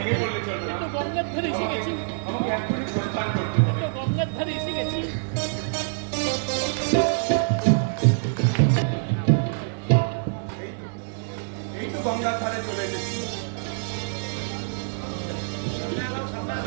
পড়লে চলবে না। তো গঙ্গার ধারে এসে গেছি, আমাকে এখনই প্রস্থান করতে হবে। তো গঙ্গার ধারে এসে গেছি। এই তো গঙ্গার ধারে চলে এসেছি।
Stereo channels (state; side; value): silent; left; 61 dB below the other